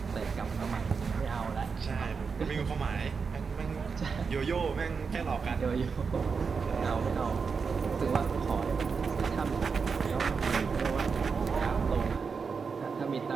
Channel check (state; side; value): quieter; left; 5.4 dB